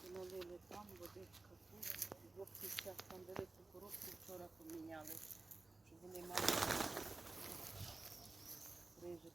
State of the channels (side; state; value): left; quieter; 3.4 dB